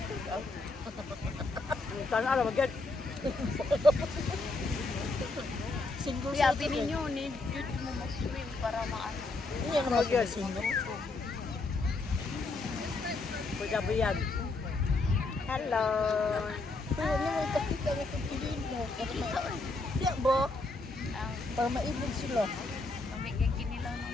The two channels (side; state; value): right; quieter; 3.3 dB